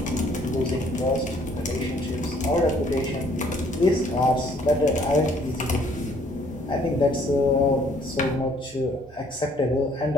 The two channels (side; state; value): both; normal; correlation 0.62